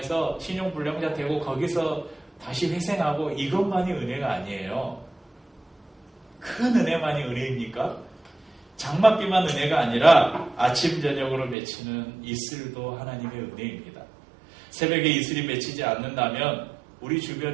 신용불량자 되고 거기서 다시 회생하고 이것만이 은혜가 아니에요. 큰 은혜만이 은혜입니까? 장맛비만 은혜가 아니라 아침 저녁으로 맺히는 이슬도 하나님의 은혜입니다. 새벽에 이슬이 맺히지 않는다면 우리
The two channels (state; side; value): drops out; left; at 11.6 s